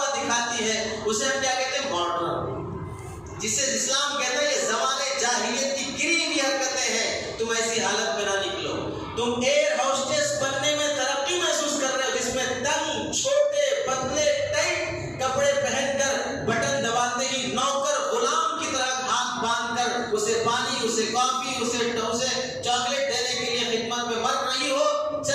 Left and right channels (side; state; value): both; identical; correlation 1.00